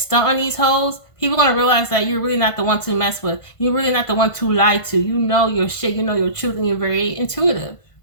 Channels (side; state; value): right; late; 1.5 ms